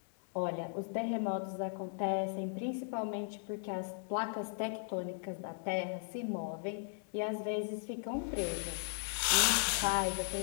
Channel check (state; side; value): silent; right; digital silence